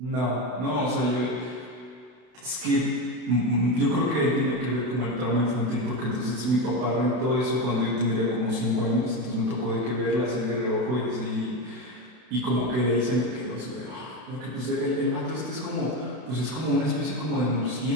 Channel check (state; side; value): late; left; 32 ms